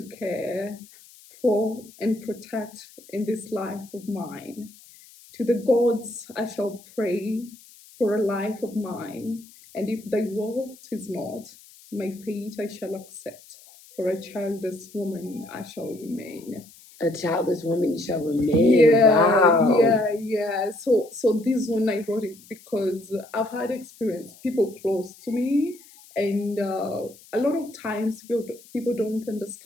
care for and protect in this life of mine. To the gods I shall pray for a life of mine, and if thy will is not, my fate I shall accept. For a childless woman I shall remain. A childless woman shall remain. Yeah, Wow. yeah. So this one I wrote it because I've had experience, people close to me, and a lot of times people don't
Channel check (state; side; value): noise; left; hiss, 23 dB below the sound